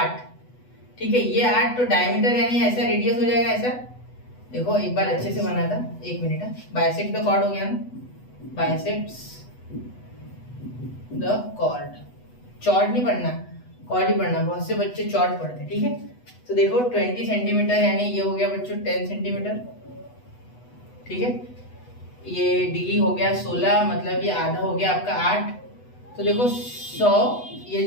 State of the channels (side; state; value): right; late; 8.1 ms